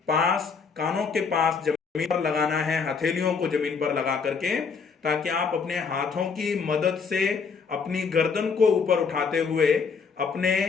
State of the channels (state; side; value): quieter; right; 5.4 dB